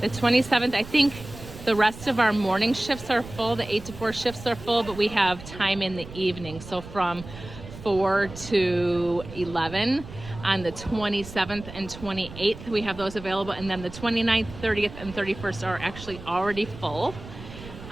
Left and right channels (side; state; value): right; noise; rumble, 14 dB below the sound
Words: 27th, I think the rest of our morning shifts are full. The 8 to 4 shifts are full, but we have time in the evening. So from 4 to 11 on the 27th and 28th, we have those available. And then the 29th, 30th, and 31st are actually already full